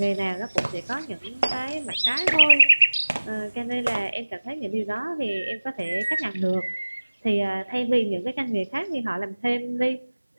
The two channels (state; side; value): inverted; both; correlation -1.00